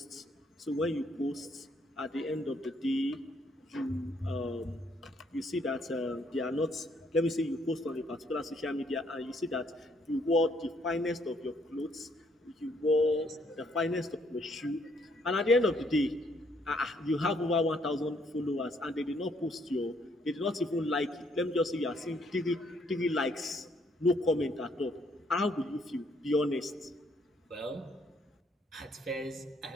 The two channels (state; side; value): normal; both; correlation 0.69